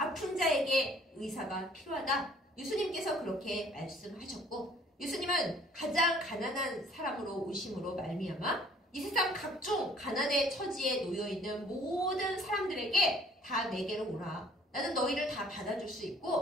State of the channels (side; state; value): both; normal; correlation 0.56